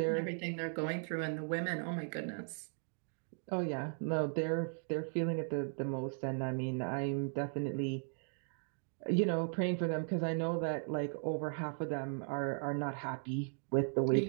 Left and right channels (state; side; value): silent; left; 53 dB below the other